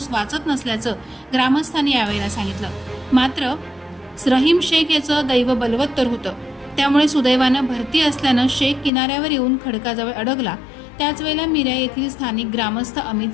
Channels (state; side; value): drops out; right; at 8.9 s